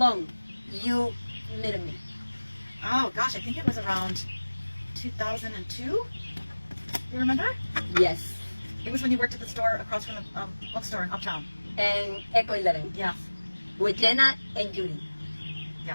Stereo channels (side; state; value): both; inverted; correlation -1.00